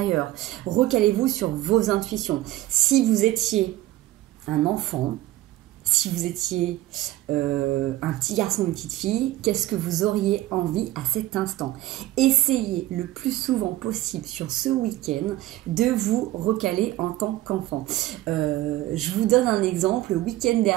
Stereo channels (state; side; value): quieter; left; 15.8 dB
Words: Recalez-vous sur vos intuitions. Si vous étiez un enfant, si vous étiez un petit garçon ou une petite fille, qu'est-ce que vous auriez envie à cet instant? Essayez le plus souvent possible sur ce week-end de vous recaler en tant qu'enfant. Je vous donne un exemple. Le week-end